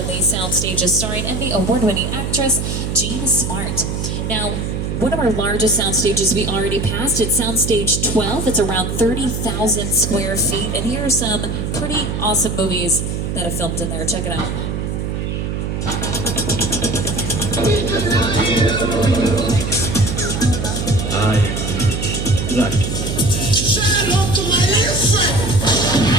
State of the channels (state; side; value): noise; right; hum, 3 dB below the sound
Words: the sound stages starring Emmy award-winning actress Jean Smart. Now, one of our largest sound stages we already passed, it's Soundstage 12. It's around 30,000 square feet, and here are some pretty awesome movies that have filmed in there. Check it out.